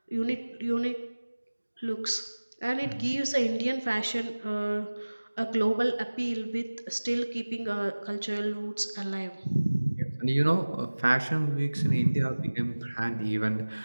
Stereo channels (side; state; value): both; inverted; correlation -1.00